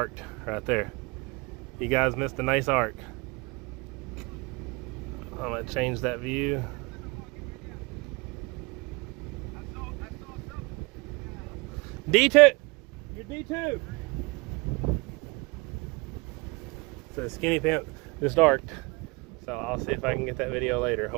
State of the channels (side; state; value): left; quieter; 27.2 dB